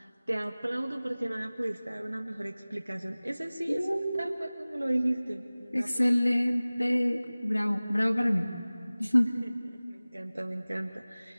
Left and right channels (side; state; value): both; inverted; correlation -0.99